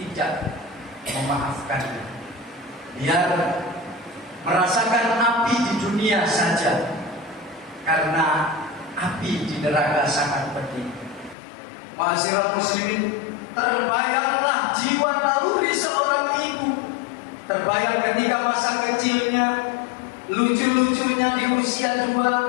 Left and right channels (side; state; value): right; drops out; at 11.4 s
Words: memaafkannya. Biar merasakan api di dunia saja, karena api di neraka sangat pedih. Ma'asyiral muslimin, terbayanglah jiwa naluri seorang ibu. Terbayang ketika masa kecilnya, lucu-lucunya di usia